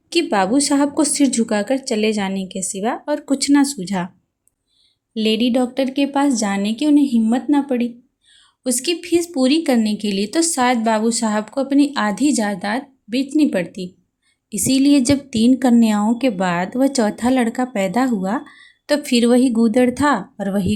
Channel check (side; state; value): both; identical; correlation 1.00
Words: कि बाबू साहब को सिर झुकाकर चले जाने के सिवा और कुछ ना सूझा। लेडी डॉक्टर के पास जाने की उन्हें हिम्मत ना पड़ी। उसकी फीस पूरी करने के लिए तो शायद बाबू साहब को अपनी आधी जायदाद बेचनी पड़ती। इसीलिए जब 3 कन्याओं के बाद वह चौथा लड़का पैदा हुआ तो फिर वही गूदड़ था और